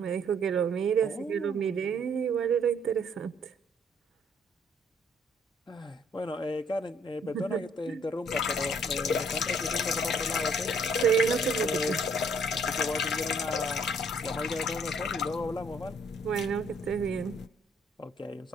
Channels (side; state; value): both; normal; correlation 0.64